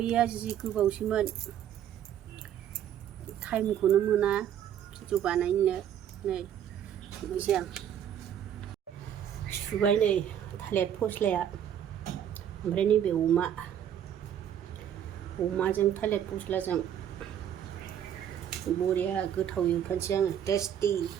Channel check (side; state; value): left; quieter; 9.9 dB